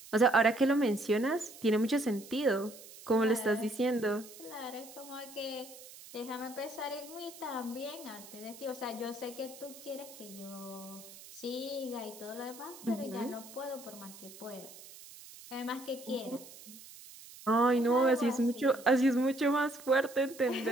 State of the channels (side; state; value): right; noise; hiss, 17 dB below the sound